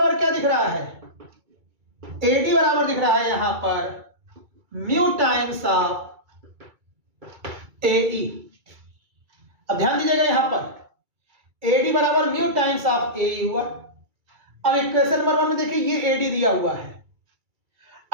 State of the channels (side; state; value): left; late; 2.3 ms